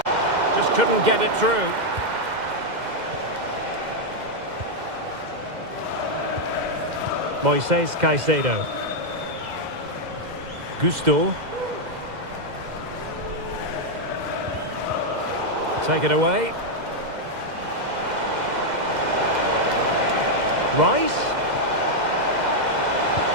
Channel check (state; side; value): late; left; 2.0 ms